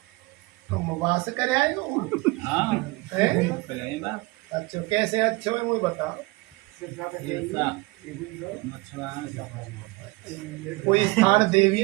तुम वास कर आए हो? अच्छा कैसे अच्छे हो मुझे बताओ। कोई स्थान देवी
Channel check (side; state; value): left; quieter; 22.8 dB